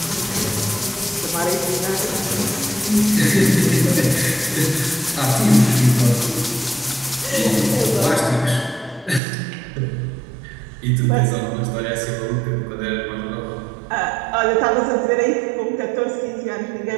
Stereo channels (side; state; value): left; drops out; at 9.2 s